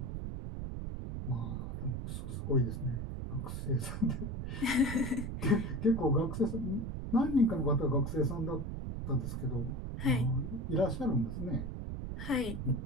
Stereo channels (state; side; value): noise; right; rumble, 5 dB below the sound